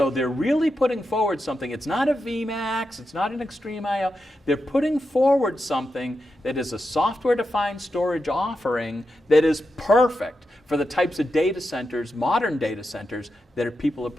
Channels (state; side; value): normal; both; correlation 0.88